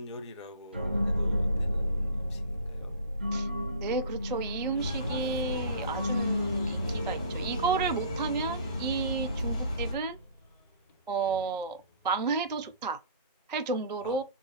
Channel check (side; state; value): both; inverted; correlation -0.45